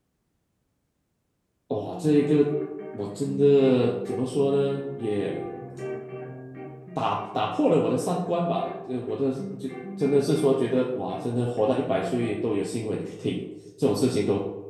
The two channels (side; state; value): both; identical; correlation 1.00